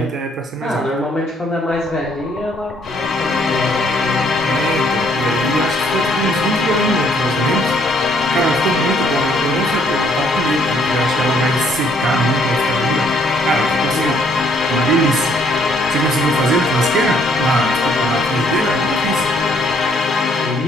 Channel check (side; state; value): both; normal; correlation 0.66